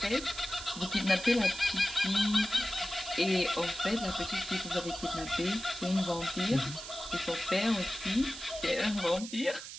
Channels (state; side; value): noise; right; hiss, 11 dB below the sound